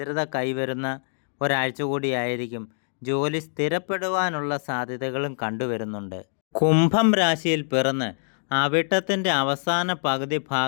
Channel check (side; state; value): right; silent; digital silence